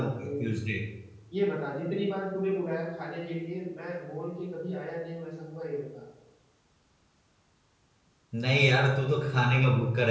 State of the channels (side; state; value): both; identical; correlation 1.00